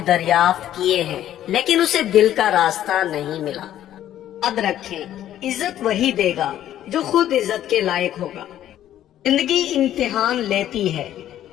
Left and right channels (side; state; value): right; quieter; 11.9 dB